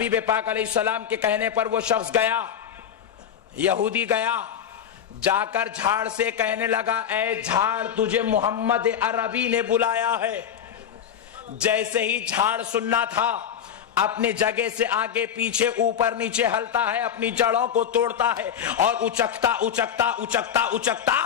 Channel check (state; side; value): quieter; right; 8.8 dB